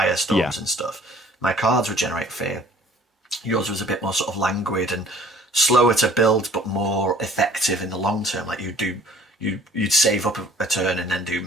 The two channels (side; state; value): both; normal; correlation 0.53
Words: and stuff. My cards would generate fear. Yours was a bit more sort of languid and slower to build, but more effective in the long term. Like you'd save up a turn and then do